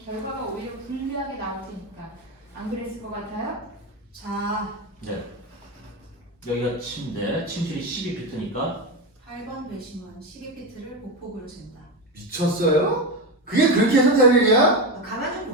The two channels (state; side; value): normal; both; correlation 0.15